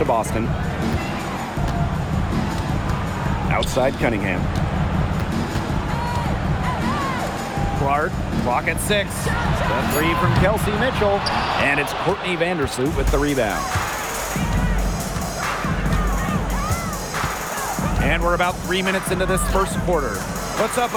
Boston. Outside Cunningham. Clark, clock at 6. The three from Kelsey Mitchell. And it's Courtney Vandersloot with the rebound. And we're about 3 minutes into this first quarter. Puts up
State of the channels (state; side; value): identical; both; correlation 1.00